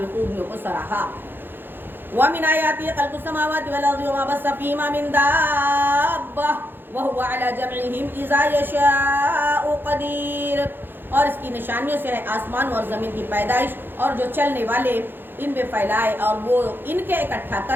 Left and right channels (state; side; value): late; left; 0.099 ms